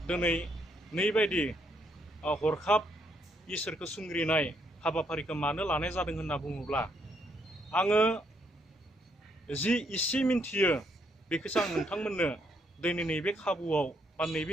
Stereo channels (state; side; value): normal; both; correlation 0.73